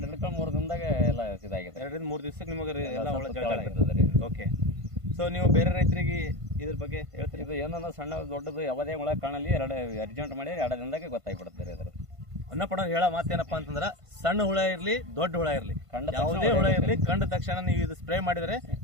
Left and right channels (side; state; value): left; late; 1.5 ms